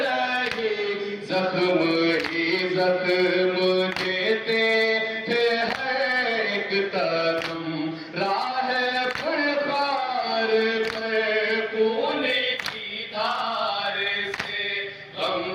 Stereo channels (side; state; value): both; identical; correlation 1.00